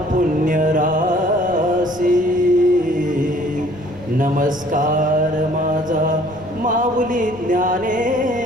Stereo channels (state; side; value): noise; left; rumble, 21 dB below the sound